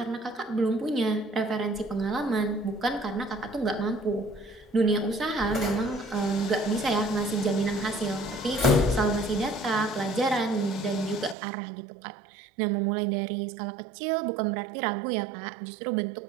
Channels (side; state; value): left; drops out; at 11.4 s